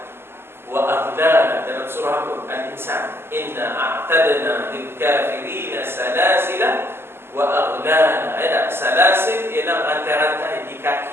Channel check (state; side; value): late; left; 0.12 ms